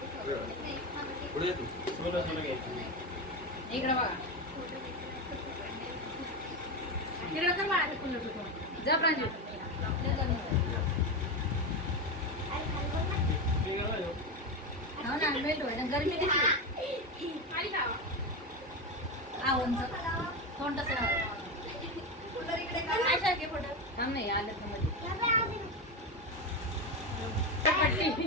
पुढे ये तू. इकडे बघा. इकडे कर बाळा ते कुल्लू तू. जा प्रांजू. हो ना मेल्ट व्हायला गरमी दिसली. उंच तोंड तसं थांब नाही आलं तर मध्ये.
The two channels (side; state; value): both; normal; correlation 0.15